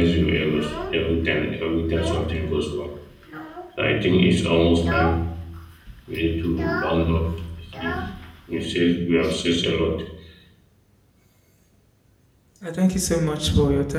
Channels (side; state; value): both; identical; correlation 1.00